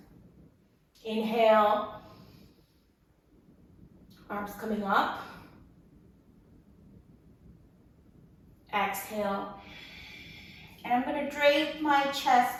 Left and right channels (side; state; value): both; identical; correlation 1.00